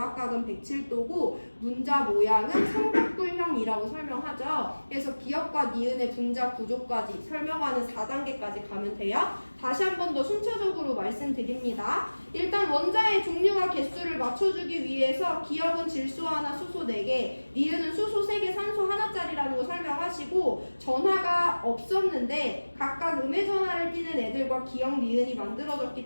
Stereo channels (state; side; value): inverted; both; correlation -1.00